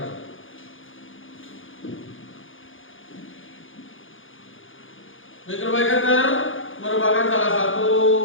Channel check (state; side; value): late; right; 0.58 ms